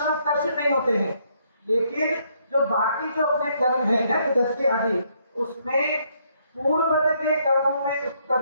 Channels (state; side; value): inverted; both; correlation -0.71